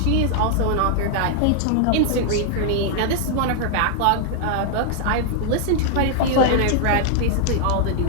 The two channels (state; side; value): different; both; correlation -0.01